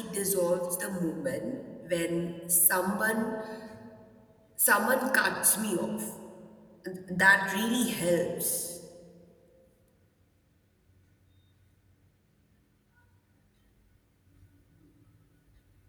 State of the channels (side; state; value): both; identical; correlation 1.00